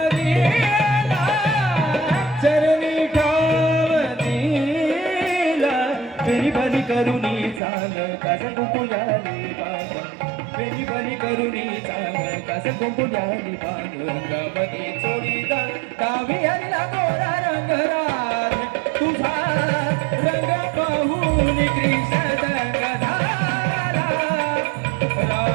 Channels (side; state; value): left; drops out; at 7.6 s